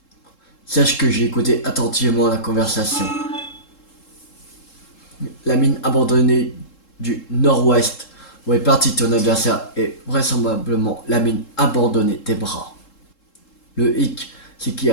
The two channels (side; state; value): right; late; 3.7 ms